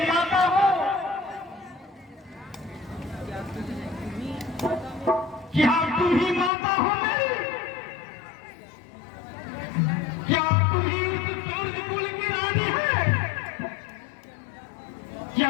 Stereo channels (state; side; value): drops out; right; at 6.5 s